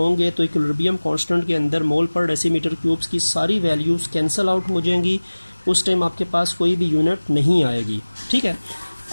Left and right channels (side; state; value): both; inverted; correlation -1.00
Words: तो इक्विलिब्रियम कांस्टेंट के अंदर मोल पर डेसीमीटर क्यूब्स की सारी वैल्यूज़ कैंसिल आउट हो जाएंगी. उस टाइम आपके पास कोई भी यूनिट नहीं आएगी. ठीक है.